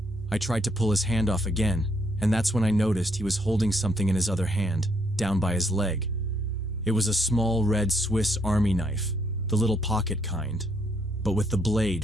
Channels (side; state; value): both; normal; correlation 0.72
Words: I tried to pull his hand off again, and that's when I noticed he was holding something in his other hand, down by his leg. It was a small red Swiss Army knife, the little pocket kind, but with the